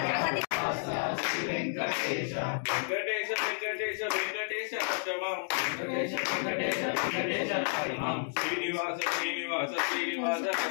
శ్రీ వెంకటేశ వెంకటేశ వెంకటేశ వెంకటేశ రక్షమం వెంకటేశ వెంకటేశ వెంకటేశ హరిమాం శ్రీనివాస శ్రీనివాస శ్రీనివాస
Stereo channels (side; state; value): right; silent; digital silence